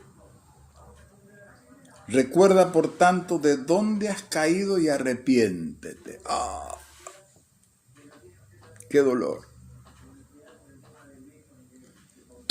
Recuerda, por tanto, de dónde has caído y arrepiéntete. ¡Ah! ¡Qué dolor!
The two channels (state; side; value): identical; both; correlation 1.00